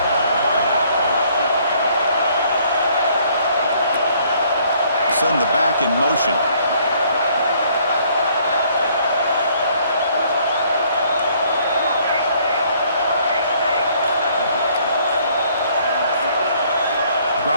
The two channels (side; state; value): both; inverted; correlation -0.63